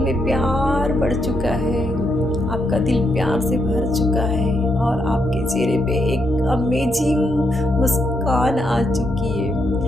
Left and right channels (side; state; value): both; normal; correlation 0.79